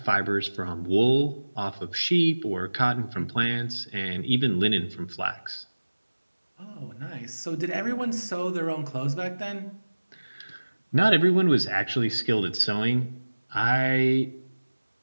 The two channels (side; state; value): both; inverted; correlation -1.00